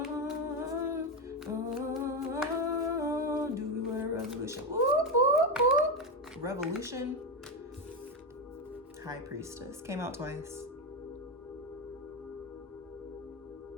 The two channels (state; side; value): normal; both; correlation 0.11